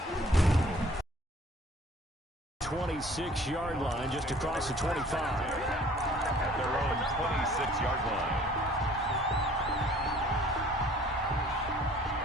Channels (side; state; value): both; normal; correlation 0.53